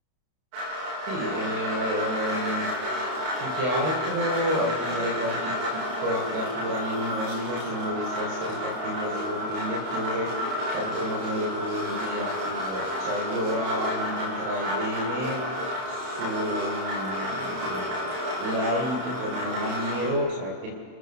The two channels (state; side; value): late; left; 31 ms